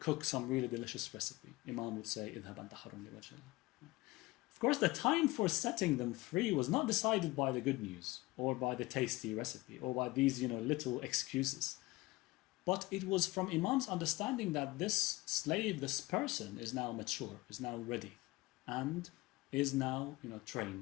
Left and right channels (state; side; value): quieter; right; 21.0 dB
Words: some really delicious recipe. Imam would say, "Idhab anta hurrun li wajhillah." Of course, the time for setting them free was not decided by the good news, or by the tasty recipe, or by these little excuses. But it was from Imam's understanding that this slave, this person, is now mature, is now ready, and is now